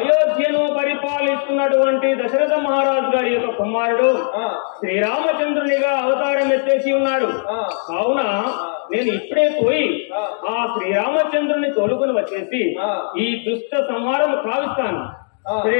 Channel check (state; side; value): silent; right; digital silence